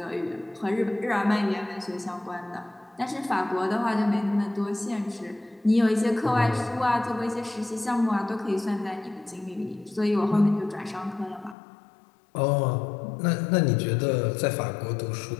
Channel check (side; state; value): right; drops out; at 11.6 s